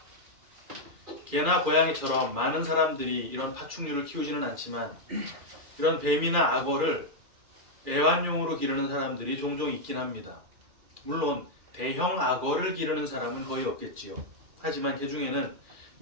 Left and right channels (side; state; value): left; late; 2.4 ms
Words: 개나 고양이처럼 많은 사람들이 이런 파충류를 키우지는 않지만 이런 뱀이나 악어를 애완용으로 기르는 사람들이 종종 있긴 합니다. 물론 대형 악어를 기르는 사람은 거의 없겠지요. 하지만 그 중에는